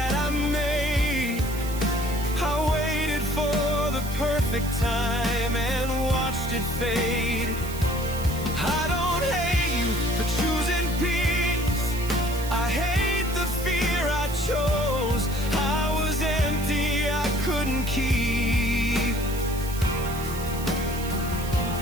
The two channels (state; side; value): noise; right; hiss, 12 dB below the sound